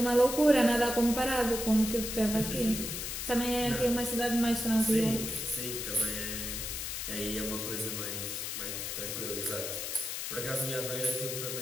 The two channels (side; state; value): left; noise; hiss, 4 dB below the sound